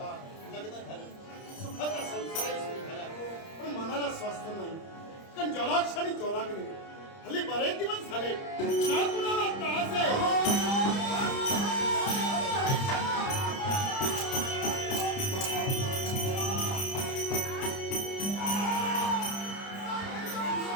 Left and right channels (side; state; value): right; late; 30 ms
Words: लग्न झालं, सुखाचा संसारही सुरू झाला. पण मनाला स्वास्थ्य नाही, कारण जलाक्ष आणि जोलाग नाही. हल्ली बरेच दिवस झाले ना कुणाला त्रास आहे.